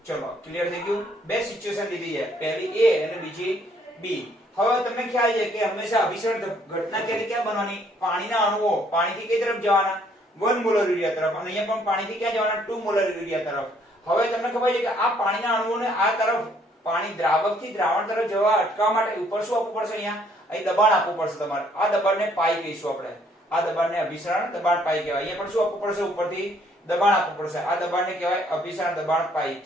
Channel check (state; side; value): normal; both; correlation 0.65